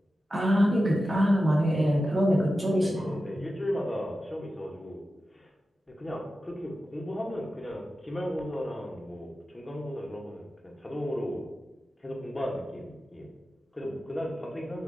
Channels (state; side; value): normal; both; correlation 0.93